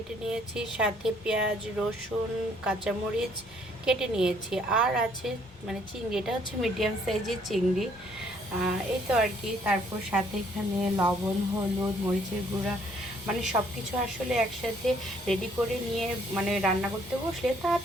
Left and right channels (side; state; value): left; noise; rumble, 26 dB below the sound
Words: নিয়েছি, সাথে পেঁয়াজ, রসুন, কাঁচামরিচ কেটে নিয়েছি। আর আছে মানে চিংড়ি, এটা হচ্ছে মিডিয়াম সাইজের চিংড়ি। এই তো আর কি। তারপর সাথে এখানে লবণ, হলুদ, মরিচের গুঁড়া, মানে সব কিছু আসলে একসাথে রেডি করে নিয়ে মানে রান্না করতে বসলে